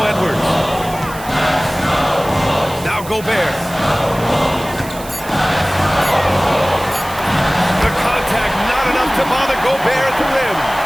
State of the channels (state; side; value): noise; right; hiss, 16 dB below the sound